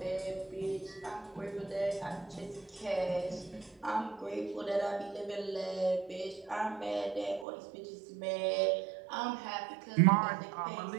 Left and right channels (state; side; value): drops out; left; at 7.5 s